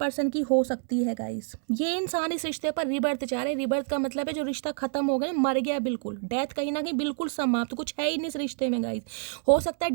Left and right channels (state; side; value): silent; left; 59 dB below the other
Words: की हो सकती है गाइस। ये इंसान इस रिश्ते पर रिबर्थ चाह रहे हैं। रिबर्थ का मतलब है जो रिश्ता खत्म हो गया, मर गया, बिल्कुल डेथ, कहीं ना कहीं बिल्कुल समाप्त, कुछ है ही नहीं इस रिश्ते में गाइस। हो सकता है